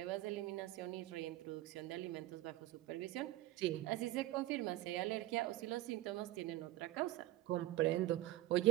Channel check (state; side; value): quieter; left; 16.0 dB